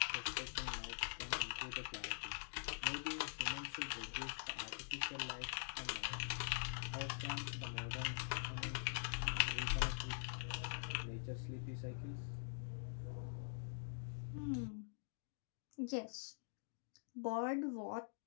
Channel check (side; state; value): right; silent; digital silence